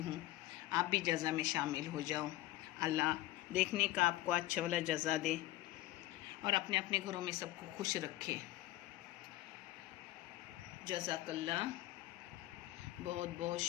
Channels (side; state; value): right; quieter; 16.6 dB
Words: आप भी जज़ा में शामिल हो जाओ। अल्लाह देखने का आपको अच्छा वाला जज़ा दे और अपने अपने घरों में सबको खुश रखे। जज़ाकल्लाह, बहुत बहुत